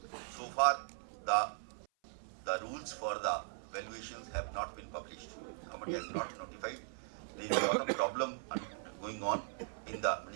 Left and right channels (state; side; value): silent; left; 52 dB below the other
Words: So far, the rules for the valuations have not been published. Government has not notified. There is a lot of problem going on in the